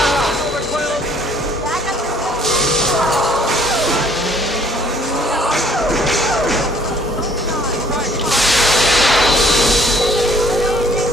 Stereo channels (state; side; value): normal; both; correlation 0.59